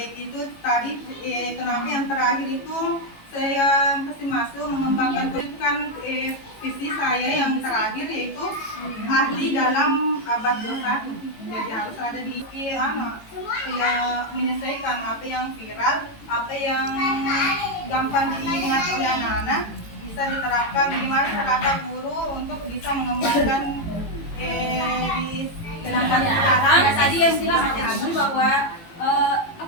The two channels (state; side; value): late; right; 18 ms